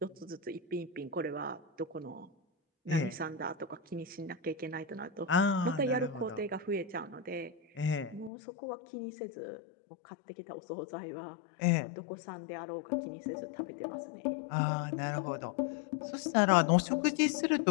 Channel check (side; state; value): right; drops out; at 8.3 s